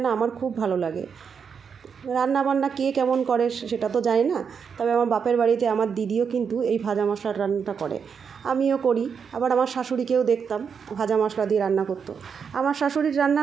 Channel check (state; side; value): quieter; left; 6.5 dB